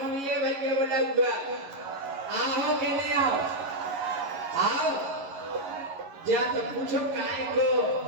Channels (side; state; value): left; late; 11 ms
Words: घूमिए भाई के बोलबगा आओ के नहीं आओ जा तो पूछो काय को